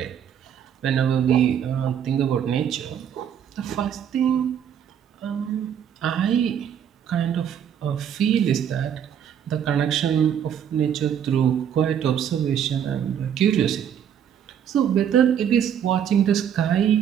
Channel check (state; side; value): quieter; left; 8.9 dB